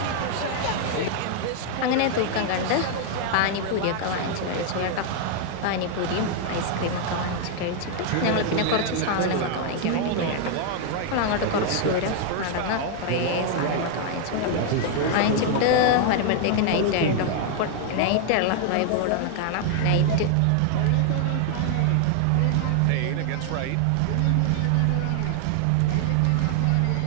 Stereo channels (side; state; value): both; different; correlation 0.00